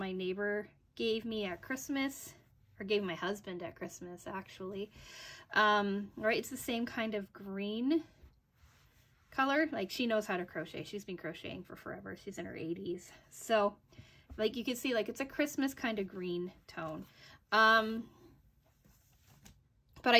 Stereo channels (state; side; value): identical; both; correlation 1.00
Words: neighbor gave me at Christmas, or gave my husband at Christmas actually. Right, it's the same kind of green color. Like she knows how to crochet. She's been crocheting for forever. She's in her 80s. So like you can see, like it's a Christmas kind of green tone. But I